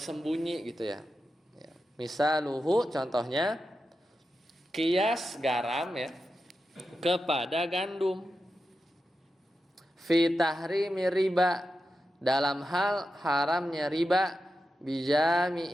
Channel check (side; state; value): both; normal; correlation 0.90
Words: gitu ya. Misaluhu contohnya kias garam ya kepada gandum. Fi tahrimi riba dalam hal haramnya riba